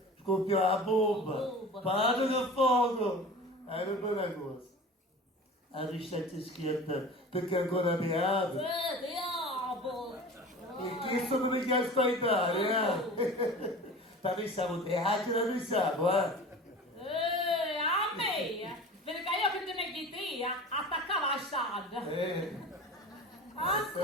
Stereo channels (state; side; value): normal; both; correlation 0.37